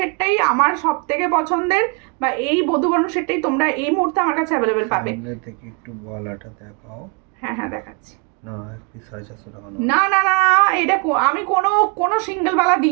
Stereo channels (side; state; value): left; quieter; 33.5 dB